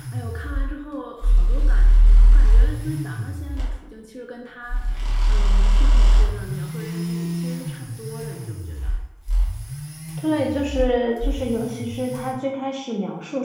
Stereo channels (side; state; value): both; identical; correlation 1.00